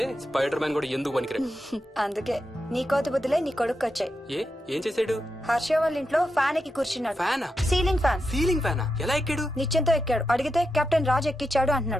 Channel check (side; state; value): both; normal; correlation 0.87